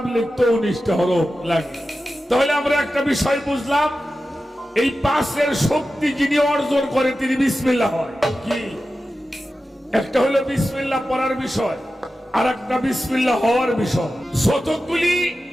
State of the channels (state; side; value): normal; both; correlation 0.93